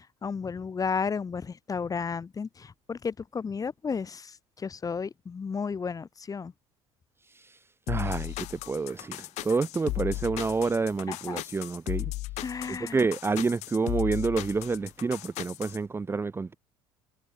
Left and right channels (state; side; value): normal; both; correlation 0.74